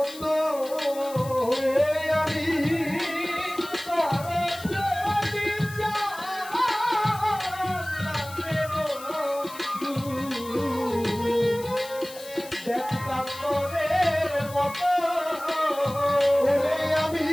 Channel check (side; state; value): left; noise; hiss, 16 dB below the sound